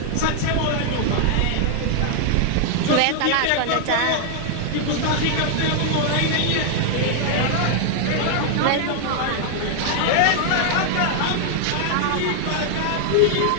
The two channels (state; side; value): different; both; correlation 0.00